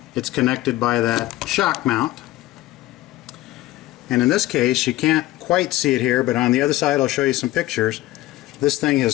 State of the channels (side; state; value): right; quieter; 16.8 dB